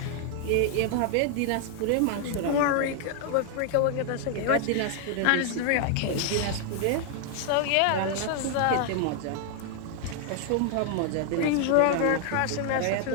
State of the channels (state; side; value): different; both; correlation 0.00